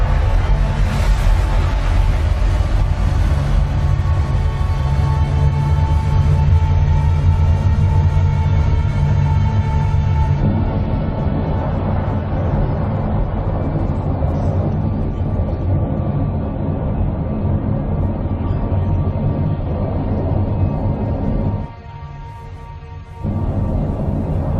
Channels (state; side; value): identical; both; correlation 1.00